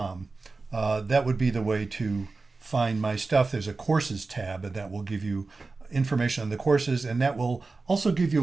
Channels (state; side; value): quieter; left; 3.8 dB